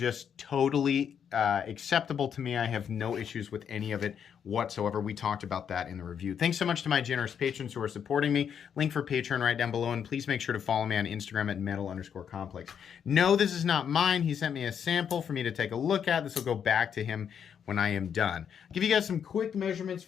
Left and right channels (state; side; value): quieter; right; 7.9 dB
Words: totally acceptable to me. I have no issues with any of it whatsoever. We talked about that in the review. Thanks so much to my generous patrons who are supporting me. Link for Patreon right down below, and please make sure to follow me on Instagram at metal_complex. No, this is not mine. He sent me a sample for me to take a look at. This will go back to him when I am done. I'll give you guys some quick measurements